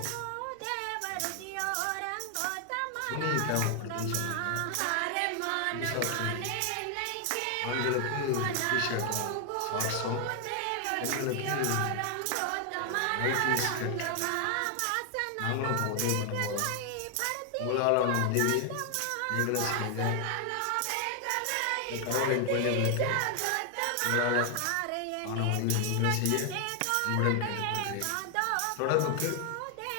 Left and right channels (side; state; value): both; different; correlation 0.00